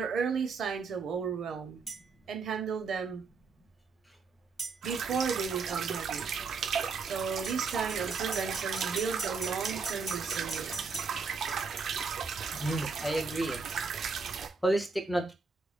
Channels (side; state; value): left; quieter; 4.8 dB